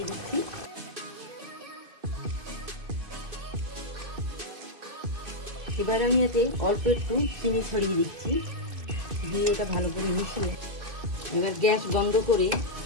দিচ্ছি। এবার আমি এতে অল্প একটু চিনি ছড়িয়ে দিচ্ছি, দিয়ে এটা ভালো করে মিশিয়ে এবার গ্যাস বন্ধ করে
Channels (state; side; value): late; left; 2.5 ms